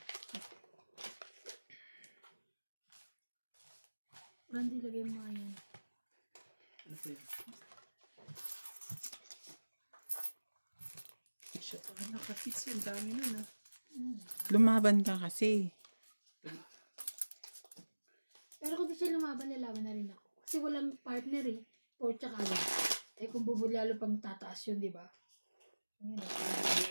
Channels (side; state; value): both; inverted; correlation -1.00